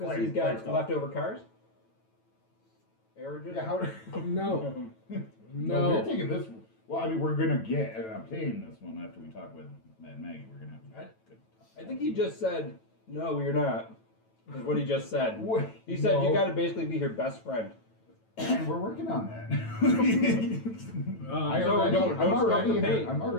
Flame- he's got flame skull. leftover cars. Aerojet? Yeah, how? No, No, we're no. taking this. Well, I mean, we're gonna get and obtain this one after we talk with Matt and Maggie. We're gonna have good. I think he just said, "No, you're not." Is what he just said. Wait, He said you no. got to basically be her best friend. We're working on that. Um, don't I'm already stop the in pain. her, I'm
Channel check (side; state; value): right; late; 9.1 ms